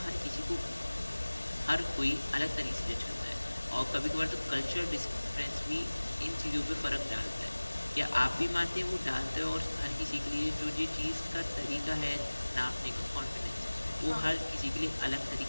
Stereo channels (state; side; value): inverted; both; correlation -1.00